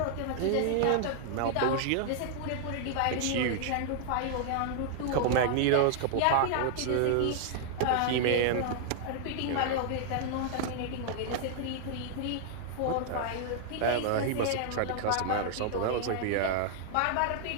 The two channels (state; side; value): different; both; correlation -0.01